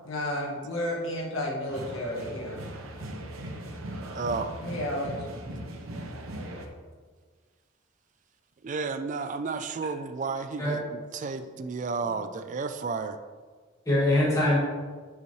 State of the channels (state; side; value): normal; both; correlation 0.35